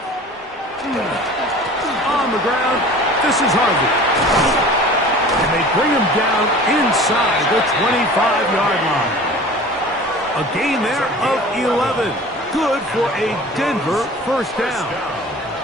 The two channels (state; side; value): normal; both; correlation 0.42